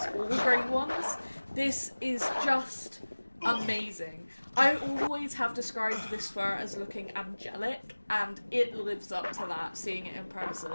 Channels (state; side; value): inverted; both; correlation -1.00